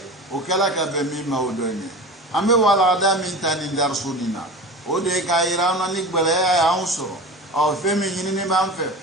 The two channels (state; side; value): normal; both; correlation 0.32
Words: o kala ka be mi mawdoni ambe wala da min tani darsunina o de ka irana ni gbele ya unso o femi yini ni manfe